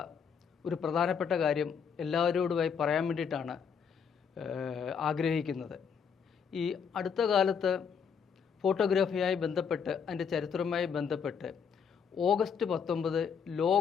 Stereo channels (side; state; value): right; quieter; 6.8 dB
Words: ഒരു പ്രധാനപ്പെട്ട കാര്യം എല്ലാവരോടുമായി പറയാൻ വേണ്ടിയിട്ടാണ് ആഗ്രഹിക്കുന്നത്. ഈ അടുത്ത കാലത്ത് ഫോട്ടോഗ്രാഫിയായി ബന്ധപ്പെട്ട് അതിൻ്റെ ചരിത്രവുമായി ബന്ധപ്പെട്ട് ഓഗസ്റ്റ് 19